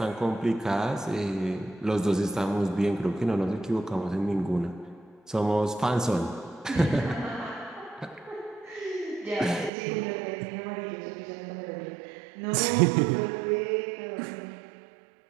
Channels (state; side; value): drops out; left; at 9.7 s